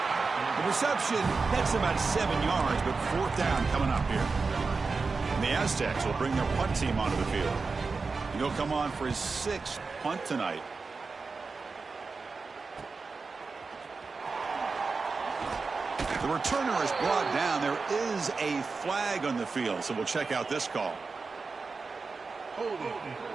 The reception nets about 7 yards, but 4th down coming up here. And the Aztecs will bring their punt team onto the field. And he'll come on for his 6th punt tonight. The returner is brought down. There is a flag on the field, so we'll check out this call. Holding.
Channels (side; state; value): left; quieter; 4.4 dB